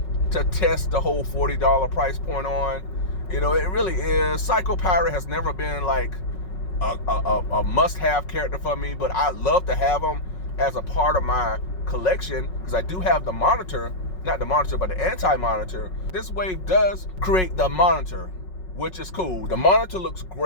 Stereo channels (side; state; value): right; late; 5.4 ms